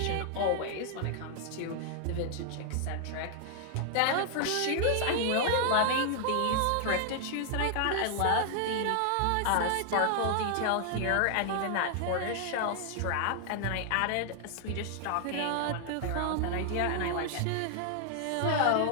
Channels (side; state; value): both; different; correlation 0.00